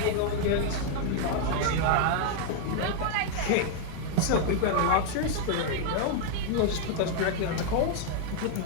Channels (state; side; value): different; both; correlation 0.00